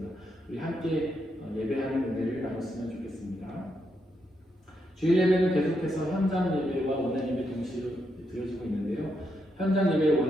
우리 함께 예배하는 은혜를 나눴으면 좋겠습니다. 주일 예배는 계속해서 현장 예배와 온라인 예배 동시에 드려지고 있는데요. 현장 예배를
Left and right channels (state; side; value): normal; both; correlation 0.81